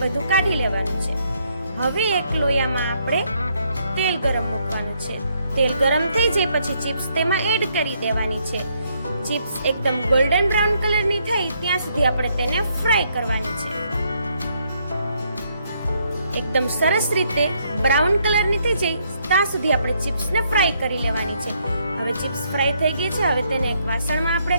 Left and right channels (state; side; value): inverted; both; correlation -0.72